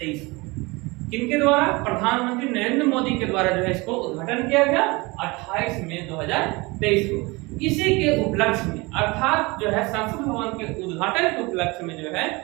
को। किनके द्वारा? प्रधानमंत्री नरेंद्र मोदी के द्वारा जो है इसको उद्घाटन किया गया 28 मई 2023 को। इसी के उपलक्ष्य में, अर्थात जो है संसद भवन के उद्घाटन के उपलक्ष्य में जो है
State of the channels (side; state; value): left; quieter; 24.7 dB